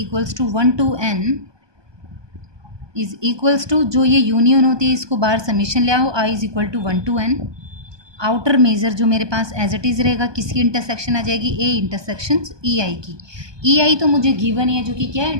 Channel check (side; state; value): left; late; 1.2 ms